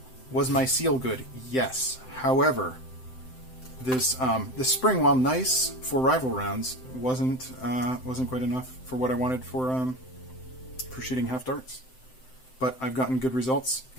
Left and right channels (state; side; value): late; right; 7.8 ms